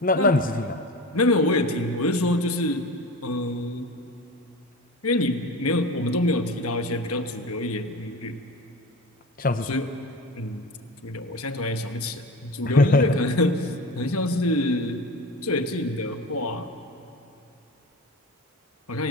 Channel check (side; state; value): both; normal; correlation 0.32